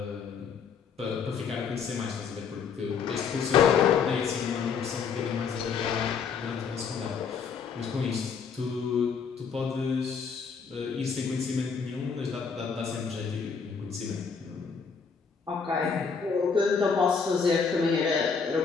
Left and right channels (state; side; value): quieter; right; 5.9 dB